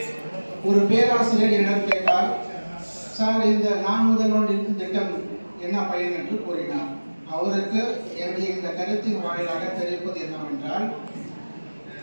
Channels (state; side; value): inverted; both; correlation -1.00